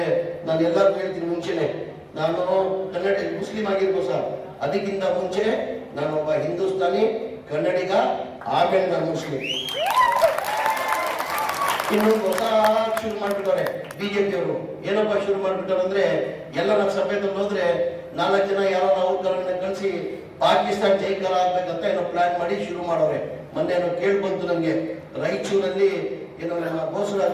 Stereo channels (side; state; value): both; identical; correlation 1.00